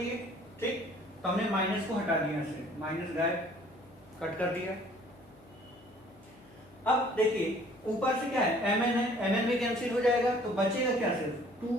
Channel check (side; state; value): left; noise; hum, 27 dB below the sound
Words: ठीक, तो हमने माइनस को हटा दिया, से माइनस गायब, कट कर दिया। अब देखिए ऊपर से क्या है, MN है, MN भी कैंसिल हो जाएगा, तो बचेगा क्या, सिर्फ